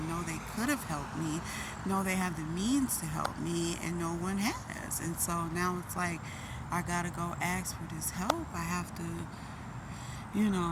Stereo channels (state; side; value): identical; both; correlation 1.00